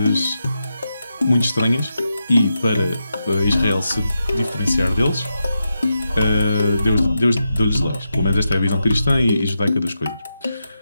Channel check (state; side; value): inverted; both; correlation -0.87